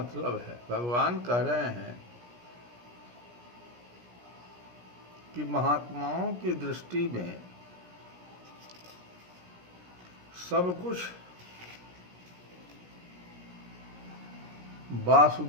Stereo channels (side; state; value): left; late; 17 ms